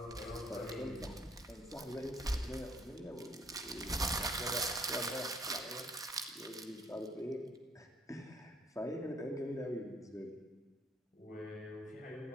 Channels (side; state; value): both; normal; correlation 0.64